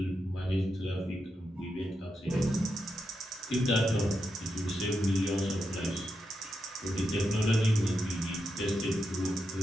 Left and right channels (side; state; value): both; normal; correlation 0.86